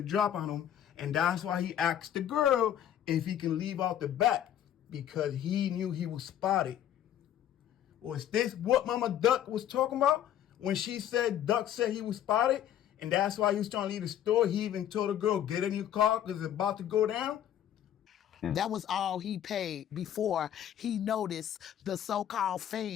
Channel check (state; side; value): quieter; right; 10.6 dB